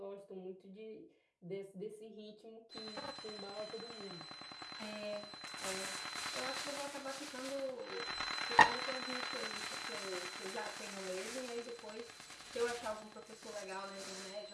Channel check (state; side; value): identical; both; correlation 1.00